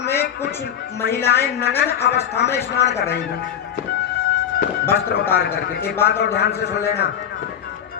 में कुछ महिलाएं नग्न अवस्था में स्नान कर रही थी, वस्त्र उतार करके। एक बात और ध्यान से सुन लेना,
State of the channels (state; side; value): quieter; right; 9.1 dB